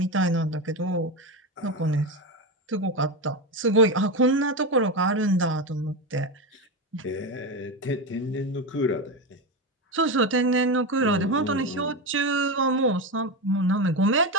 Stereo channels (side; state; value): both; normal; correlation 0.16